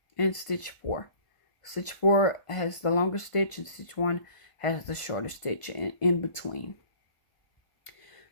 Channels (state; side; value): late; right; 1.5 ms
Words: and stitch 4. Stitch 4 has the longer stitch, and stitch 1 has the shorter stitch in between.